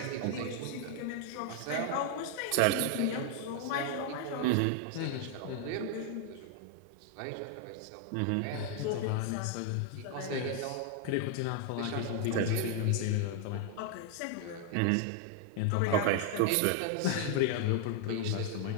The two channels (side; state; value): both; different; correlation 0.00